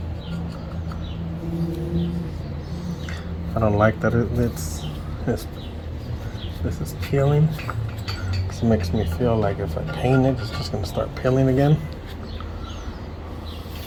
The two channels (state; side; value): identical; both; correlation 1.00